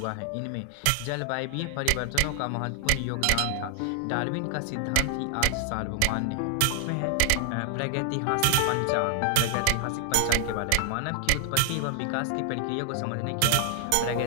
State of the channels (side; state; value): both; different; correlation 0.00